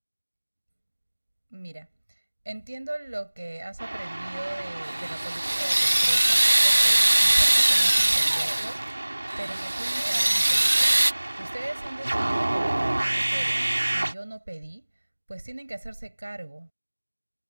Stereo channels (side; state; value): both; inverted; correlation -1.00